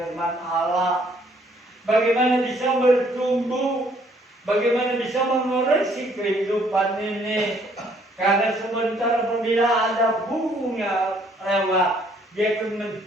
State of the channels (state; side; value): normal; both; correlation 0.64